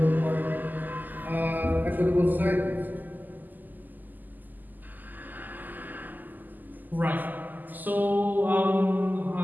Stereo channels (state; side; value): late; left; 0.085 ms